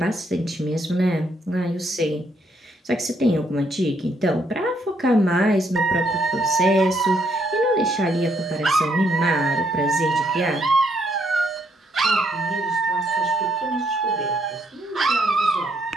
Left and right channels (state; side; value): normal; both; correlation 0.73